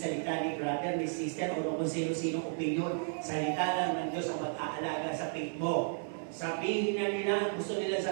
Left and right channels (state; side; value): silent; left; digital silence